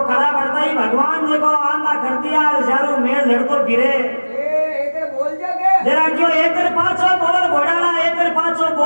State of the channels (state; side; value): inverted; both; correlation -1.00